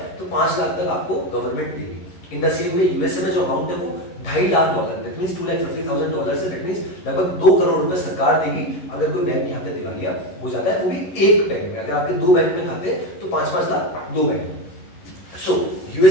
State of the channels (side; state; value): right; late; 11 ms